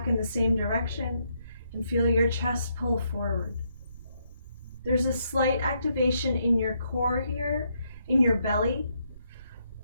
in the same direction and feel your chest pull forward. There's a slight activation in your core here, in your belly,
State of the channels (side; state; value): both; inverted; correlation -0.77